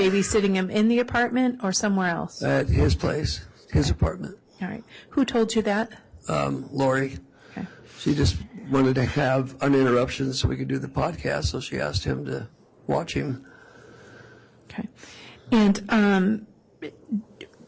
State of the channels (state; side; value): identical; both; correlation 1.00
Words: him in the apartment or somewhere else? At his place, his apartment. All right. Who told you that? Lori. Okay. She just wanted to have uninterruptions so we could do the podcast, so she asked him to watch him. Okay. And